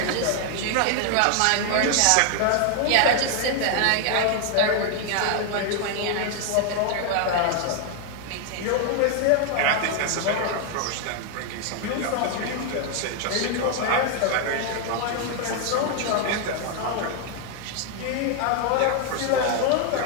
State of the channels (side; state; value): both; different; correlation 0.00